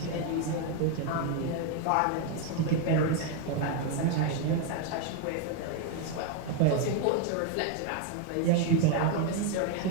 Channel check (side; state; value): both; different; correlation 0.01